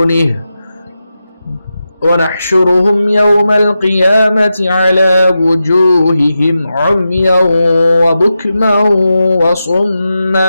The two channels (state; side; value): inverted; both; correlation -0.90